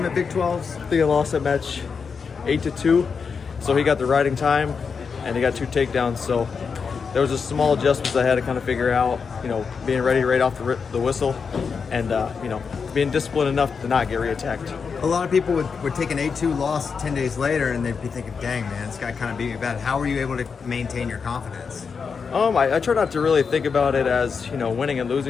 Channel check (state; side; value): quieter; right; 5.7 dB